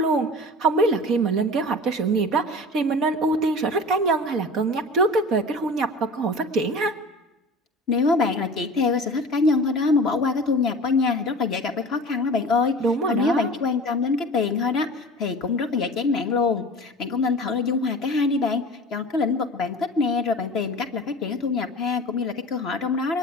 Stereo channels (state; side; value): normal; both; correlation 0.37